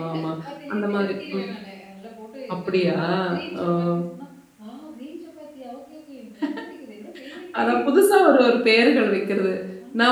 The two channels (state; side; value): identical; both; correlation 1.00